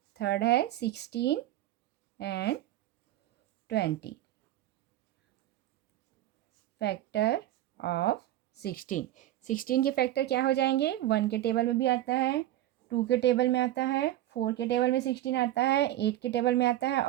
थर्ड है 16 एंड 20। Factor of 16। 16 के फैक्टर क्या हो जाएंगे? 1 के टेबल में भी आता है, 2 के टेबल में आता है, 4 के टेबल में 16 आता है, 8 के टेबल में आता है,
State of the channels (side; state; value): left; quieter; 14.0 dB